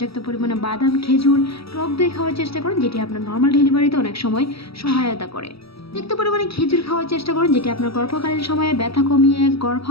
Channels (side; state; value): right; late; 0.76 ms